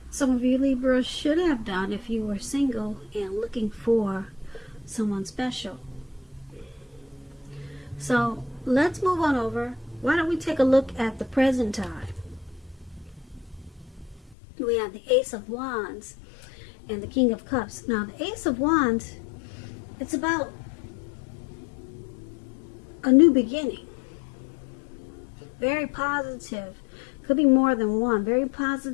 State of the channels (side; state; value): right; drops out; at 14.4 s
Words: some of you Libras should have done if you were single and looking for someone special. So let's move on over. Why don't we take a look at the present time? We have the Ace of Wands and the King of Cups. Now the Ace of Wands, it's about a new beginning. Very positive. Could be more than one. Very